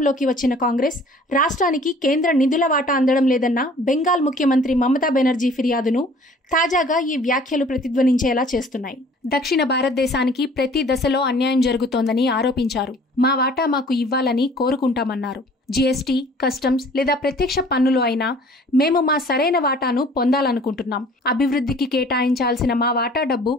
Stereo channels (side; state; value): both; normal; correlation 0.52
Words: వచ్చిన కాంగ్రెస్ రాష్ట్రానికి కేంద్ర నిధుల వాటా అందడం లేదన్న బెంగాల్ ముఖ్యమంత్రి మమతా బెనర్జీ ఫిర్యాదును తాజాగా ఈ వ్యాఖ్యలు ప్రతిధ్వనించేలా చేస్తున్నాయి. దక్షిణ భారతదేశానికి ప్రతి దశలో అన్యాయం జరుగుతోందని ఆరోపించారు. మా వాటా మాకు ఇవ్వాలని కోరుకుంటామన్నారు. జీఎస్టీ, కస్టమ్స్ లేదా ప్రత్యక్ష పన్నులు అయినా మేము మా సరైన వాటాను పొందాలనుకుంటున్నాం. అభివృద్ధికి కేటాయించాల్సిన మా వాటా డబ్బు